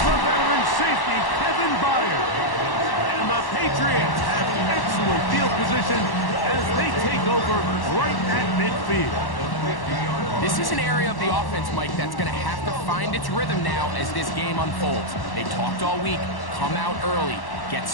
the veteran safety, Kevin Byard. And the Patriots have excellent field position as they take over right at midfield. This is an area of the offense, Mike, that's going to have to find its rhythm now as this game unfolds. They talked all week, come out early, get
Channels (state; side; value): late; right; 1.1 ms